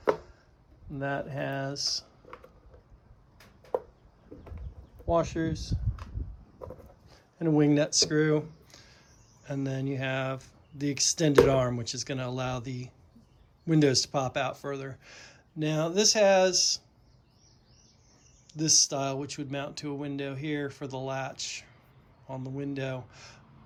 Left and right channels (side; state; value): both; identical; correlation 1.00